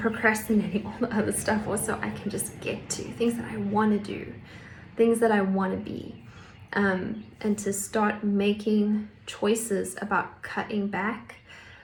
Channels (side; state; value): both; identical; correlation 1.00